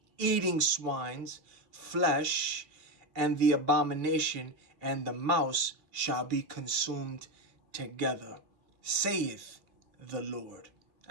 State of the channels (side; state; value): left; late; 3.2 ms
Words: eating swine's flesh, and the abomination and the mouse shall be consumed together, saith the Lord.